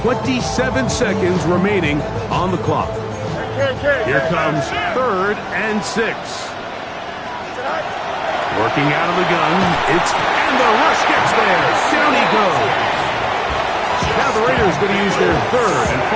27 seconds remaining on the clock. Here comes 3rd and 6. Working out of the gun. And the rush gets there. Down he goes. Now the Raiders going to use their 3rd and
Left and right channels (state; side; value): identical; both; correlation 1.00